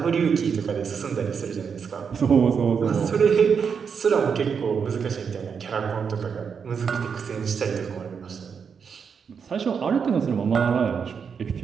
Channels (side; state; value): left; quieter; 6.4 dB